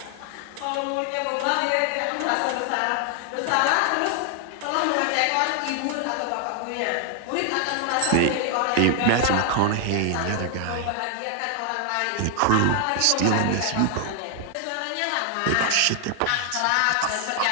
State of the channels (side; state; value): both; different; correlation 0.00